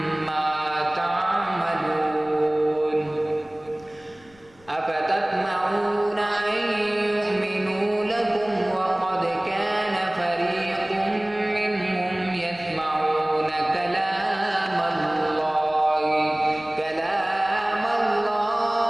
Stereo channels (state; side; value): noise; left; rumble, 28 dB below the sound